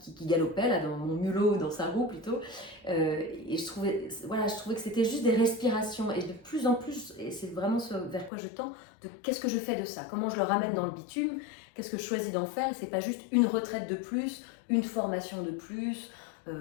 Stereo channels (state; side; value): drops out; right; at 8.3 s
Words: galopait, là, dans mon mulot, dans sa roue plutôt. Et je trouvais que c'était juste des respirations. Et de plus en plus, et c'est vraiment ce vers quoi je tends, de qu'est-ce que je fais de ça? Comment je le ramène dans le bitume? Qu'est-ce que je choisis d'en faire? C'est pas juste une retraite de plus, une formation de plus,